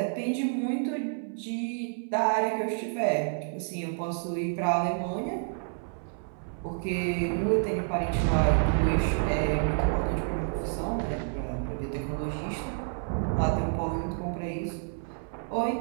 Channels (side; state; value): left; silent; 58 dB below the other